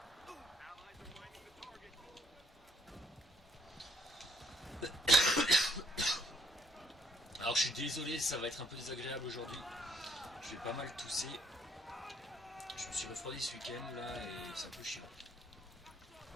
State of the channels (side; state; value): both; normal; correlation 0.66